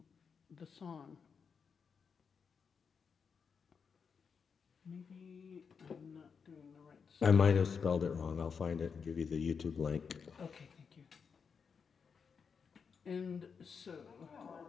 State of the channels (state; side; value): quieter; right; 6.0 dB